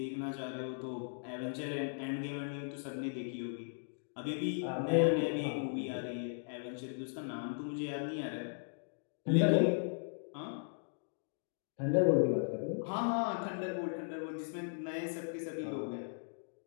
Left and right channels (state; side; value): silent; right; digital silence